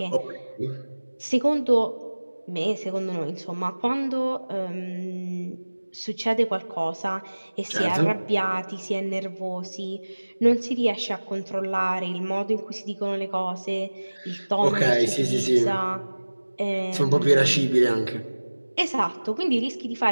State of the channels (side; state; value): both; inverted; correlation -1.00